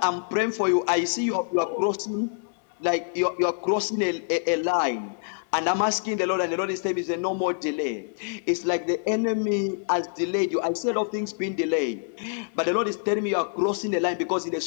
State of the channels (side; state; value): right; silent; digital silence